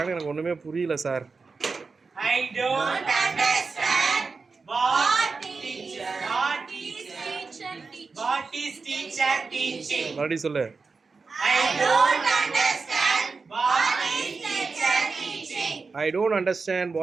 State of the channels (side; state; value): left; quieter; 4.4 dB